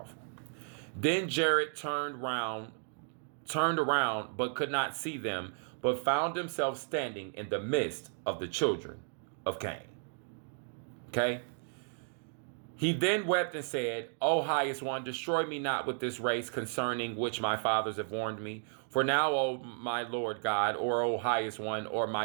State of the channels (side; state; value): left; silent; 55 dB below the other